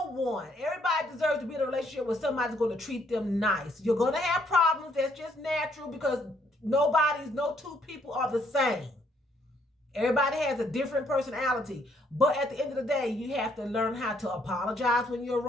one. Everybody deserves to be in a relationship where somebody's going to treat them nice. You're going to have problems. That's just natural because no two people are the same. Everybody has a different personality. But at the end of the day, you have to learn how to apologize when you're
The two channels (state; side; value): normal; both; correlation 0.69